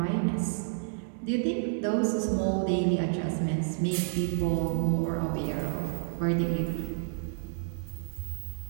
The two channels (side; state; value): left; silent; digital silence